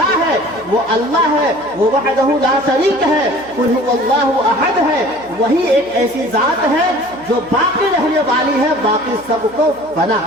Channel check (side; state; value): right; noise; hum, 26 dB below the sound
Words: है, वो अल्लाह है, वो वहदहु ला शरीक है, कुल हुवल्लाहु अहद है। वही एक ऐसी जात है जो बाकी रहने वाली है, बाकी सबको बना।